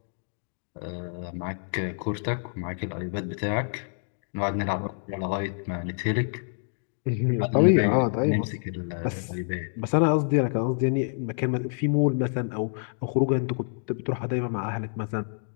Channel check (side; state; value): right; silent; digital silence